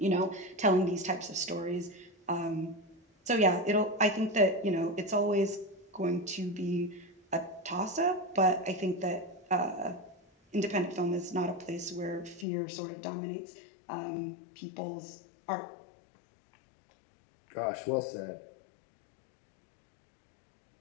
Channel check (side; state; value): right; drops out; at 12.5 s